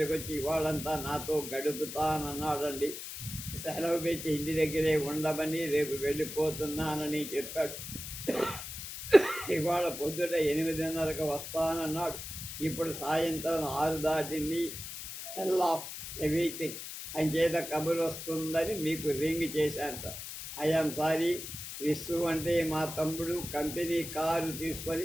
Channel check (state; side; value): noise; left; hiss, 9 dB below the sound